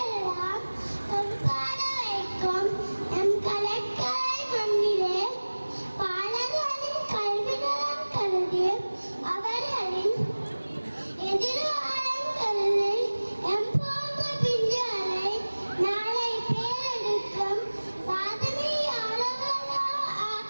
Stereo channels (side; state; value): both; inverted; correlation -1.00